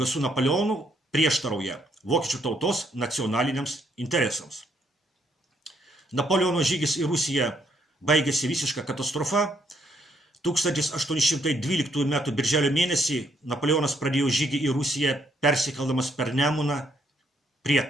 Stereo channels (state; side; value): normal; both; correlation 0.71